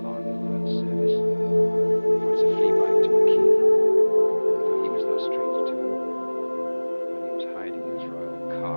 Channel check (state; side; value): inverted; both; correlation -1.00